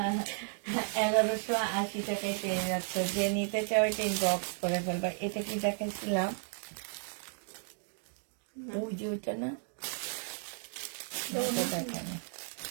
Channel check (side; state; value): left; silent; 55 dB below the other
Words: 1180 টাকায় পেয়ে যাচ্ছে। যে নিতে চাও এটা ইনবক্স করে ফেলবা। এটা কি দেখাইছিলাম? ওই যে ওইটা না, ওটা দেখানো।